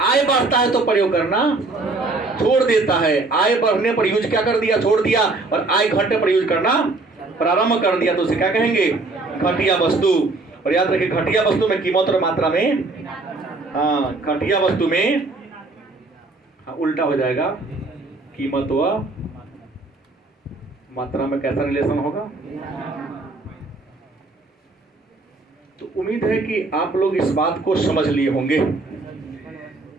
बढ़ता है तो प्रयोग करना छोड़ देता है। आय बढ़ने पर यूज क्या कर दिया? छोड़ दिया। और आय घटने पर यूज करना प्रारंभ कर दिया तो उसे क्या कहेंगे? घटिया वस्तु। और याद रखिए घटिया वस्तु में कीमत और मात्रा में, घटिया वस्तु में उल्टा हो जाएगा, कीमत व मात्रा में कैसा रिलेशन होगा? तो उम्मीद है कि आप लोग इस बात को समझ लिए होंगे।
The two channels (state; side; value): quieter; left; 3.4 dB